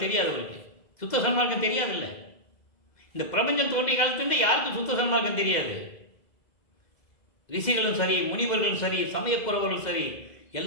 தெரியாதவருக்கு, சுத்த சன்மார்க்கம் தெரியாதில்லை. இந்த பிரபஞ்சம் தோன்றிய காலத்துலேருந்து யாருக்கும் சுத்த சன்மார்க்கம் தெரியாது. ரிஷிகளும் சரி, முனிவர்களும் சரி, சமயப்புறவர்களும் சரி,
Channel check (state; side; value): late; right; 2.0 ms